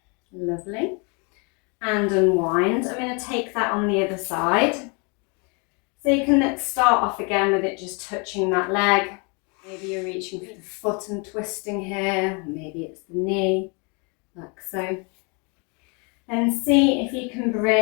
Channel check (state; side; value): quieter; right; 33.1 dB